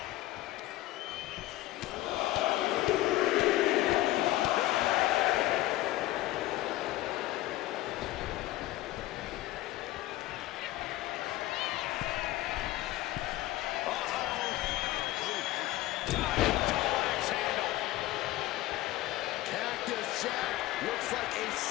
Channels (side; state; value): right; quieter; 16.5 dB